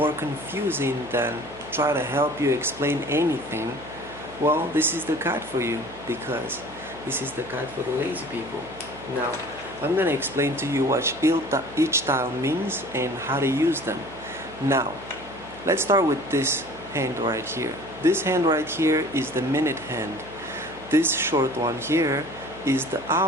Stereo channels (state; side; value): noise; right; hum, 19 dB below the sound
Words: confusing than try to help you explain anything, well, this is the guide for you, because this is the guide for the lazy people. Now, I'm going to explain to you what each tile means and how to use them. Now, let's start with this hand right here. This hand right here is the minute hand. This short one here is the